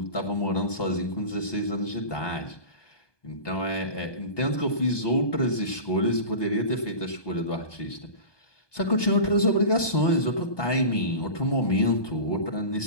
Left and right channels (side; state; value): right; late; 1.2 ms